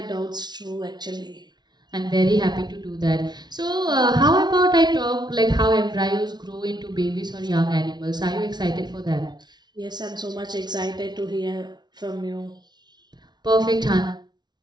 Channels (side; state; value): left; late; 0.20 ms